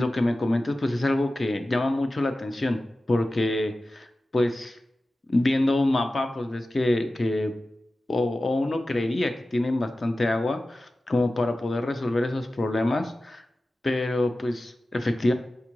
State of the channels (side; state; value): both; normal; correlation 0.95